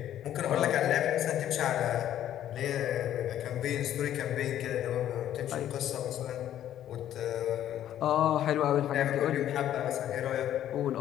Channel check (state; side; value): quieter; right; 11.5 dB